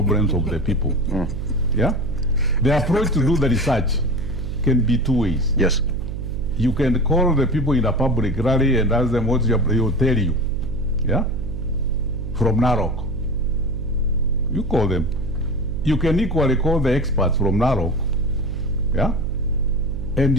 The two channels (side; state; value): right; noise; hum, 6 dB below the sound